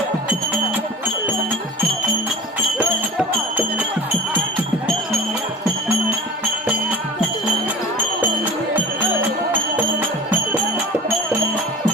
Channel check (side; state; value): both; normal; correlation 0.38